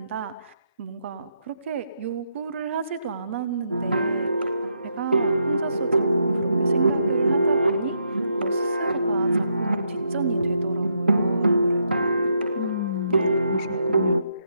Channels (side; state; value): both; inverted; correlation -0.78